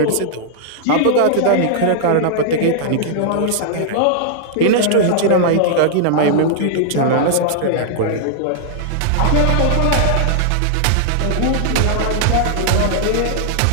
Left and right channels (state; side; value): different; both; correlation -0.01